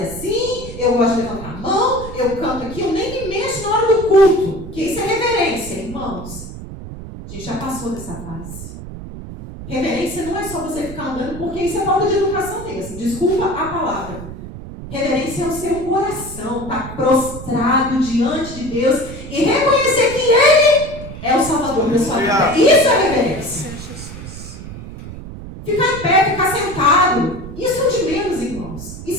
assim, eu gosto de levantar a mão, eu canto aqui, eu nem me mexo na hora do culto. Que isso é reverência, irmãos. A gente já passou dessa fase. Reverência não é só você ficar andando, porque isso é falta de educação mesmo. Desculpa a palavra. Reverência é o seu coração estar prostrado diante de Deus e reconhecer que Ele é o Salvador da sua vida. Isso é reverência. Ficar em pé, ficar sentado, isso é de menos, irmãos.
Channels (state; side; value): noise; right; rumble, 12 dB below the sound